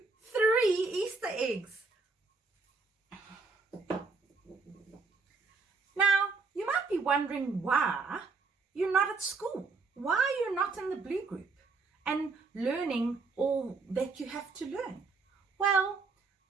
3 Easter eggs. Now, you might be wondering why you're not at school. Why you're not in the Blue Group and learning all that you have to learn. Well,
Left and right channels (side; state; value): left; quieter; 4.2 dB